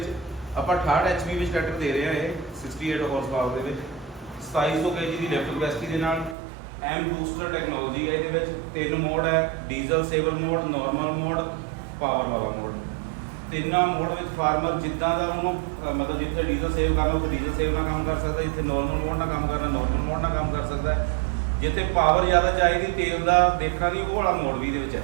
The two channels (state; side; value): drops out; left; at 6.4 s